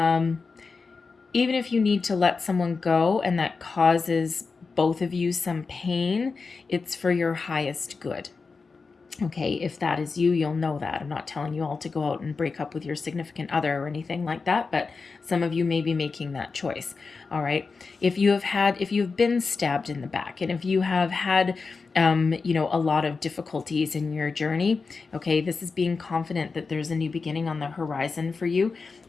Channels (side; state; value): right; quieter; 4.5 dB